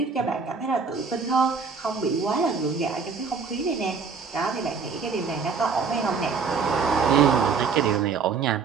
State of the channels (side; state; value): left; quieter; 5.3 dB